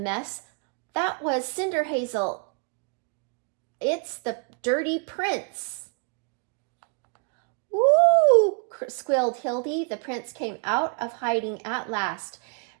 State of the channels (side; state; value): left; quieter; 37.7 dB